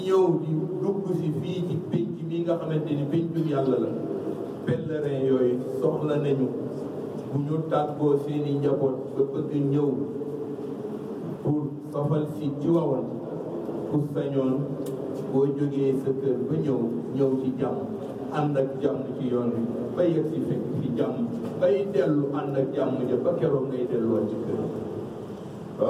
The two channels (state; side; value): identical; both; correlation 1.00